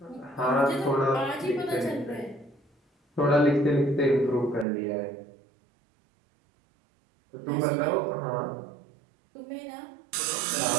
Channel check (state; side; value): drops out; left; at 4.7 s